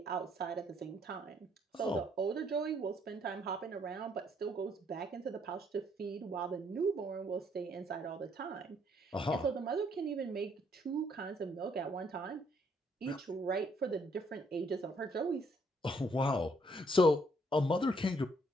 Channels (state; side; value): normal; both; correlation 0.68